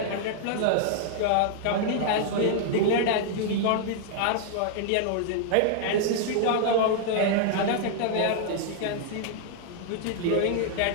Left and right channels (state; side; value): different; both; correlation -0.01